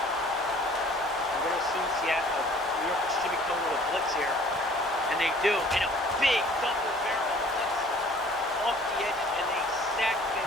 I'm going to assume Seattle, New York should be coming with a blitz here. And they do. And a big double barrel blitz off the edges. And they sack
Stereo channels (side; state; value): both; normal; correlation 0.52